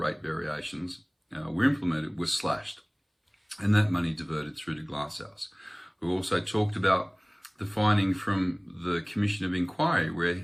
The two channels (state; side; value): identical; both; correlation 1.00